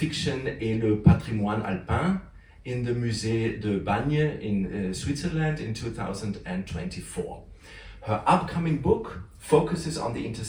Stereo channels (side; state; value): both; identical; correlation 1.00